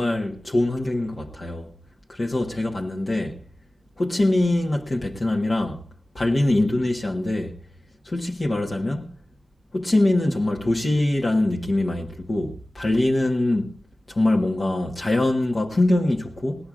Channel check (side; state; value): both; normal; correlation 0.97